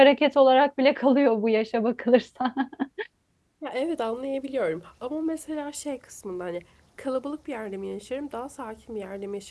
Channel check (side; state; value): both; identical; correlation 1.00